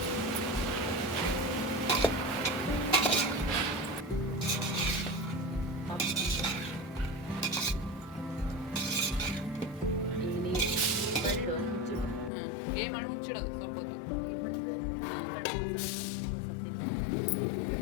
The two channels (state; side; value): drops out; right; at 12.3 s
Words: ಏ ಮಾಡಿ ಮುಚ್ಚಿಡೋದು ಸ್ವಲ್ಪ ಹೊತ್ತು.